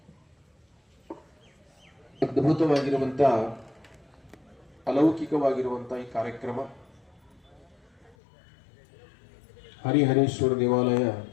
ಅದ್ಭುತವಾಗಿರುವಂತ ಅಲೌಕಿಕವಾಗಿರುವಂತ ಈ ಕಾರ್ಯಕ್ರಮ ಹರಿಹರೇಶ್ವರ ದೇವಾಲಯ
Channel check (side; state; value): right; drops out; at 8.2 s